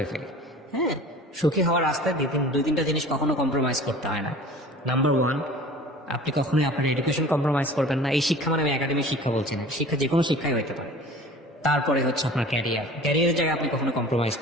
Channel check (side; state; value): both; normal; correlation 0.42